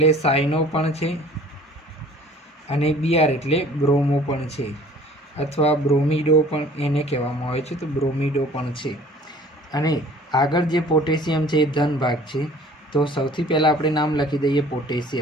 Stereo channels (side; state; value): both; normal; correlation 0.50